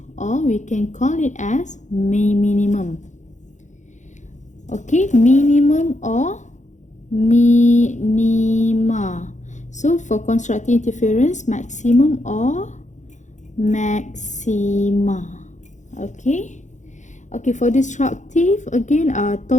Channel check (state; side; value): late; right; 0.35 ms